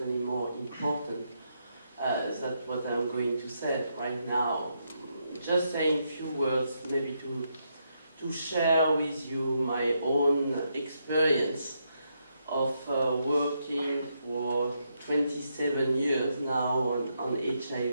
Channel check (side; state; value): both; inverted; correlation -0.80